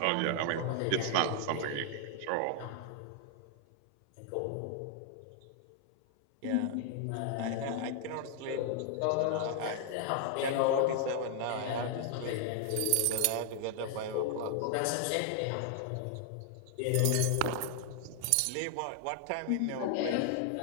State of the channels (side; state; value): both; different; correlation 0.00